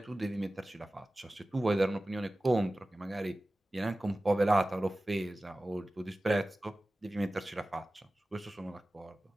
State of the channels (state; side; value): normal; both; correlation 0.96